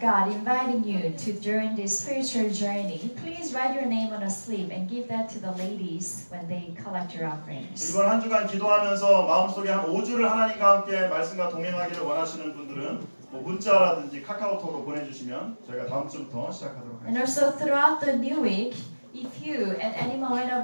inviting you to join this spiritual journey, please write your name on a slip and give that to the ladies when they collect your offerings. 이번 한 주간 기도하면서 마음속에 한 5주를 하나님과 함께 말씀과 동행하기를 원하시는 분들은 문자라든지 카카오톡으로 보내주시면 저희가 다음 주부터 시작하도록 And 하겠습니다. also throughout the new week, if you at any moment of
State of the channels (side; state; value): both; inverted; correlation -1.00